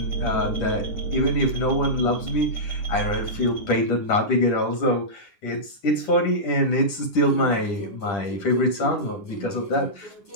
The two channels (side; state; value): right; late; 10 ms